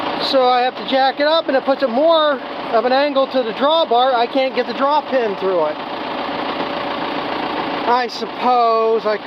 so I have to jack it up, and it puts it more of an angle to the drawbar. I can't get the draw pin through it. I suppose I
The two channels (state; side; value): identical; both; correlation 1.00